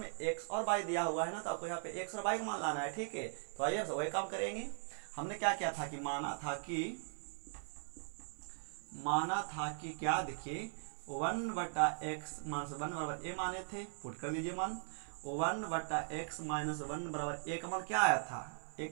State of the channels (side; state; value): left; silent; 51 dB below the other